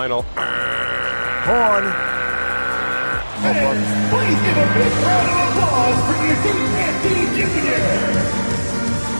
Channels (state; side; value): inverted; both; correlation -1.00